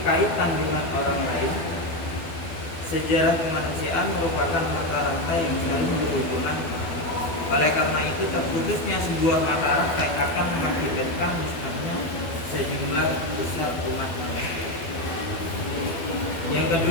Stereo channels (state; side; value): late; right; 12 ms